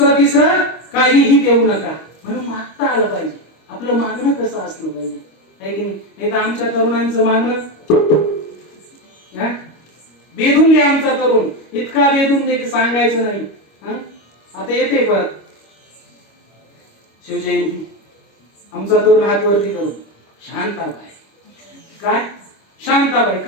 तिसरं काहीही देऊ नका. म्हणून मागता आलं पाहिजे. आपलं मागणं कसं असलं पाहिजे, आहे की नाही? तर आमच्या तरुणांचं मागणं बेधून द्या. आमचा तरुण इतका बेधून दे की सांगायचं नाही. आता येते परत शिवजयंती, आमचा तरुण हात वरती करून शांताबाई. काय शांताबाई?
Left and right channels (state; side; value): late; right; 25 ms